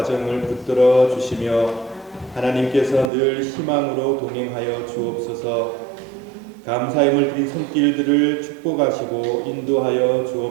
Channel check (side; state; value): left; drops out; at 3.1 s